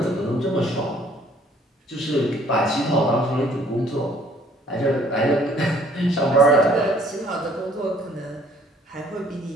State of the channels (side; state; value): both; normal; correlation 0.59